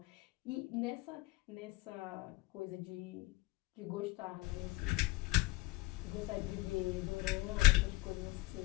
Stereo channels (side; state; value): right; quieter; 20.6 dB